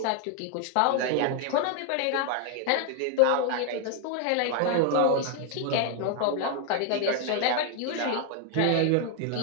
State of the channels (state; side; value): different; both; correlation 0.00